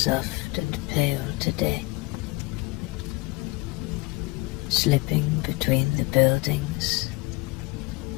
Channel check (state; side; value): quieter; right; 23.4 dB